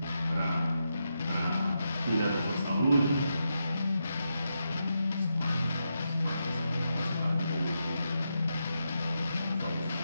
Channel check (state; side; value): inverted; both; correlation -0.85